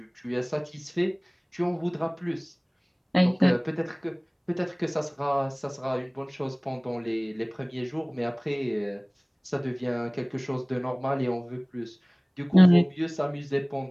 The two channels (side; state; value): both; identical; correlation 1.00